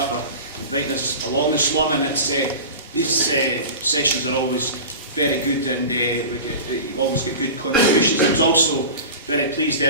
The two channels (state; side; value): inverted; both; correlation -0.32